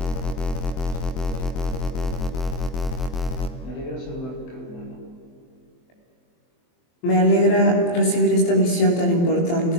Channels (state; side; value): late; right; 23 ms